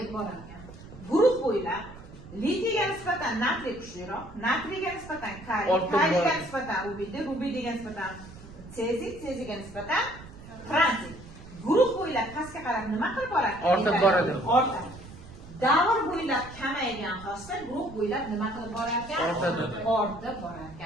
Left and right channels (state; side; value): noise; right; rumble, 17 dB below the sound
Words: borar ekan. Guruh bo'ylab litiyga nisbatan natriy kuchliroq, natriyga nisbatan kaliy, kaliyga nisbatan rubidiy, rubidiyga nisbatan seziy, seziyga nisbatan franciy. Guruh bo'ylab pastga qarab nima qilib boradi? Ortib boradi. Ortadi. Davr bo'ylab kamaygan xossa guruh bo'ylab nima qilib borar ekan? Ortadi. Ortib borar